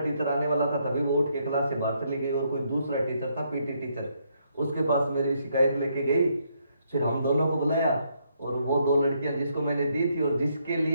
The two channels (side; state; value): both; inverted; correlation -0.74